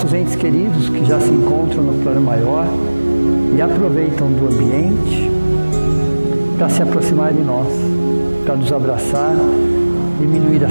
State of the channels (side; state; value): both; inverted; correlation -1.00